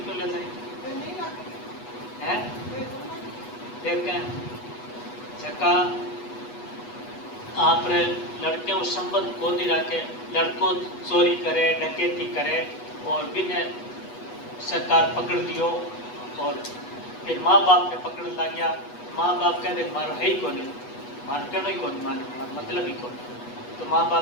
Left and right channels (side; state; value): right; late; 8.2 ms